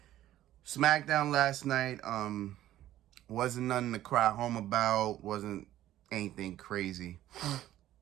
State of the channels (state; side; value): quieter; left; 13.4 dB